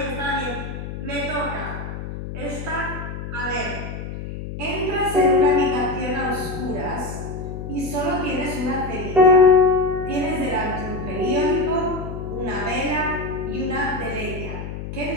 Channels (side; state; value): left; noise; hum, 8 dB below the sound